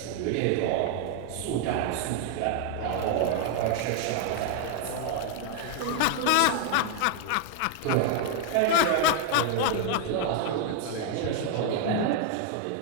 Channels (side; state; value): both; different; correlation 0.00